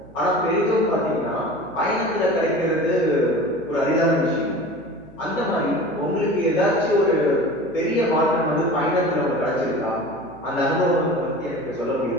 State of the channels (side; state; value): right; noise; hum, 25 dB below the sound